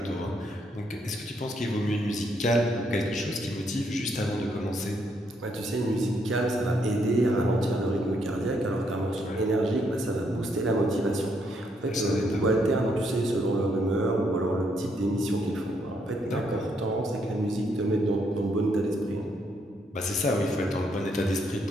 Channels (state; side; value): normal; both; correlation 0.74